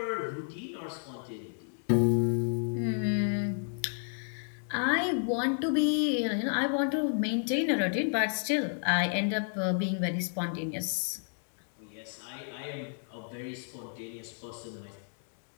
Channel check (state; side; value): silent; right; digital silence